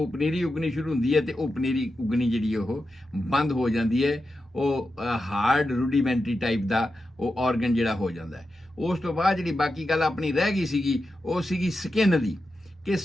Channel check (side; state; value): both; normal; correlation 0.90